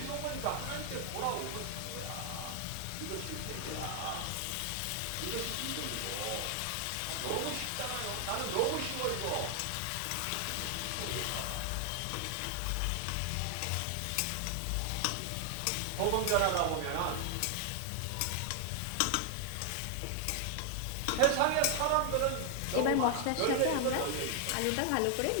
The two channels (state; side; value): different; both; correlation 0.00